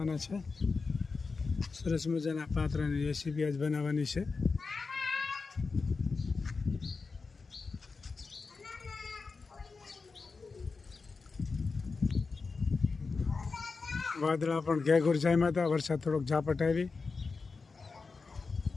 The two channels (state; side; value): quieter; right; 4.4 dB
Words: છે. સરસ મજાના પાત્રાની રેસીપી આજ બનાવવાની છે. વાદળા પણ ઘેઘૂર જામ્યા હતા. વરસાદ થોડોક ઝાપટ આવી.